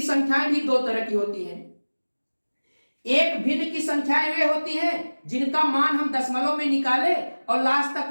संख्याएं भी दो तरह की होती हैं। एक भिन्न की संख्याएं वे होती हैं जिनका मान हम दशमलव में निकाले और लास्ट तक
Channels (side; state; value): both; inverted; correlation -1.00